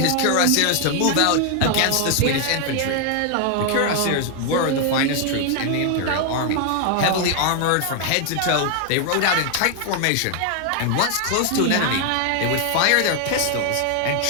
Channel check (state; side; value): different; both; correlation 0.00